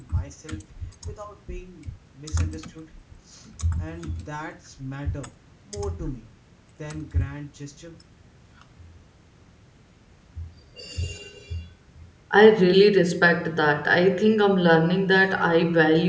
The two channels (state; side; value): identical; both; correlation 1.00